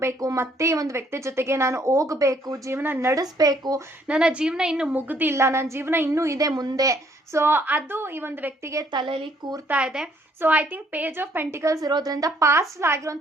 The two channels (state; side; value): normal; both; correlation 0.66